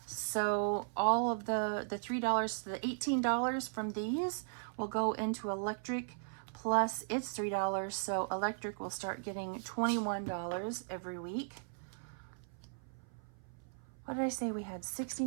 So all of the $3, the $18 from these will go into electric, plus it's $3. So electric will start getting $21 every week. What did I say? We had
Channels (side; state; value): left; silent; 53 dB below the other